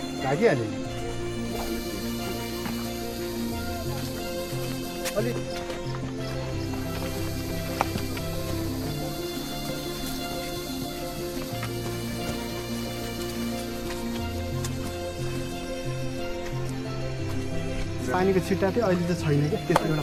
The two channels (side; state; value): both; identical; correlation 1.00